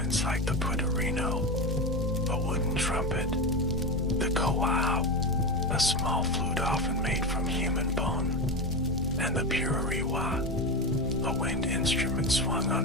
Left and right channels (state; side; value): normal; both; correlation 0.18